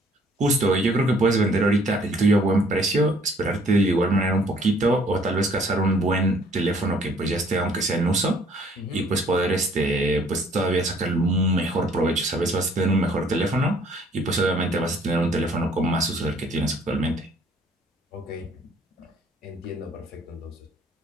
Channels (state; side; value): normal; both; correlation 0.60